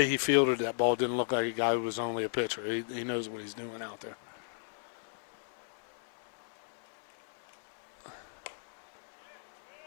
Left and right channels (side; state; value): right; silent; 54 dB below the other